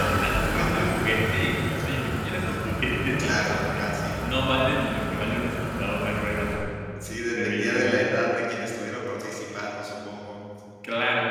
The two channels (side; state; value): both; identical; correlation 1.00